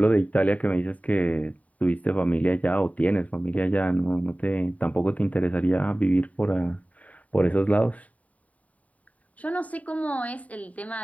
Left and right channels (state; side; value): late; right; 0.069 ms